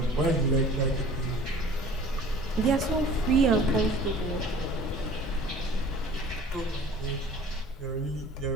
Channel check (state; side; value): normal; both; correlation 0.46